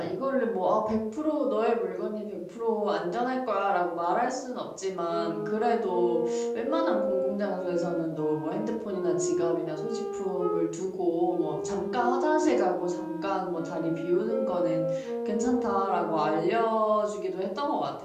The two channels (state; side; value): identical; both; correlation 1.00